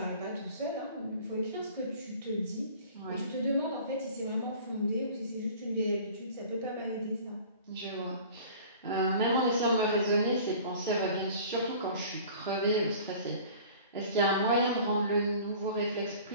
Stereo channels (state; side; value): inverted; both; correlation -0.45